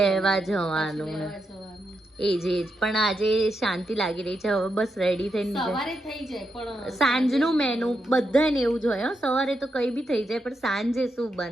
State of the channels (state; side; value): normal; both; correlation 0.84